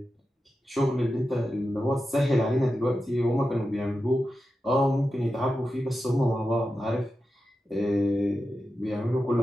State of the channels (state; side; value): normal; both; correlation 0.91